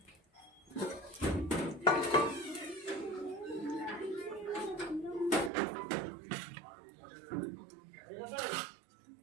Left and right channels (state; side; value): drops out; left; at 5.5 s